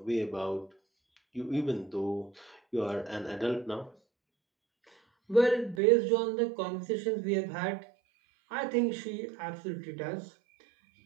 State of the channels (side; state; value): left; drops out; at 5.8 s